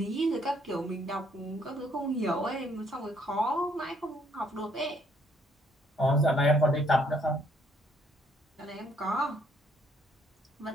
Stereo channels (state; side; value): normal; both; correlation 0.67